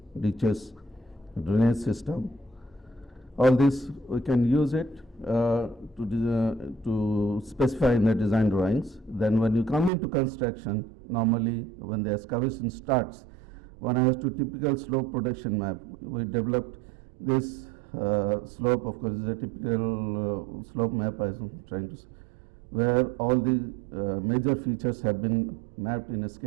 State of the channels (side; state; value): left; drops out; at 9.9 s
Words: ditches, drainage system. All this we can use it to specify in the design drawings. Then when you come into construction, normally when the excavation starts, one has to typical slope protection map. We developed this slope, of course, is a typical slope map I am trying to say, where all the major features have been mapped in a